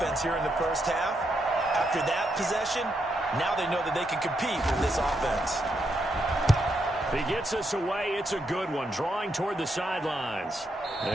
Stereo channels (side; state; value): both; normal; correlation 0.80